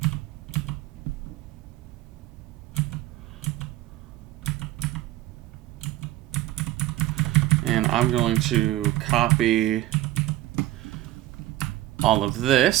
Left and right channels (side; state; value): left; quieter; 15.6 dB